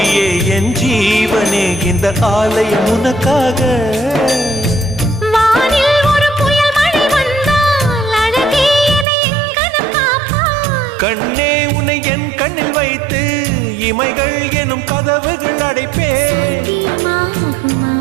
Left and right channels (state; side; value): drops out; left; at 9.1 s